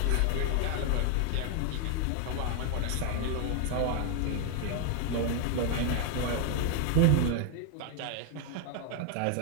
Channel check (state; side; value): different; both; correlation 0.00